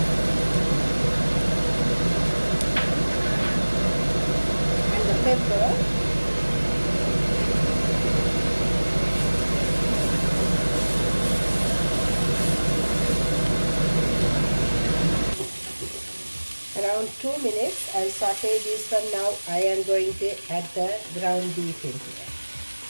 Pepper. Around 2 minutes, I'll saute this one. Now I am going to add the ground beef in here.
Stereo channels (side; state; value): both; inverted; correlation -1.00